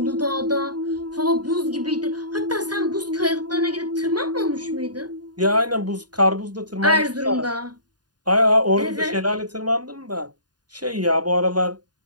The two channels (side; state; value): left; late; 0.70 ms